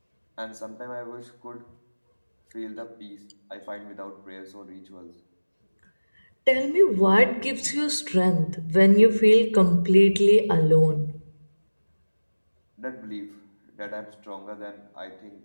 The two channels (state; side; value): inverted; both; correlation -1.00